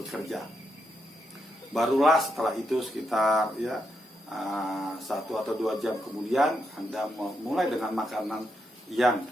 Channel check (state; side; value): normal; both; correlation 0.82